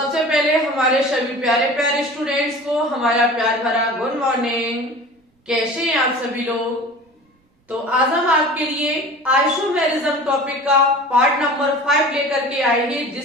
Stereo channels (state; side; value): normal; both; correlation 0.39